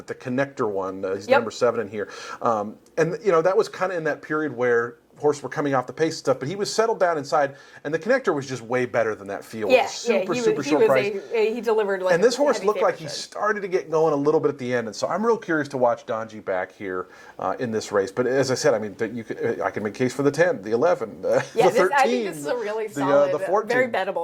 connector one. He's number 7 in here. And that was kind of in that period where horse were coming off the pace stuff, but he was settled down inside, and the connector was just way better than that field. Yeah, super short price. He delivered. And this horse looked like he started to get going a little bit at the end, and so I'm real curious to watch Donji back here in this race. But as I said, I can make a case for the 10, the 11, the 13. I think this is a really solid, the 14. very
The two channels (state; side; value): identical; both; correlation 1.00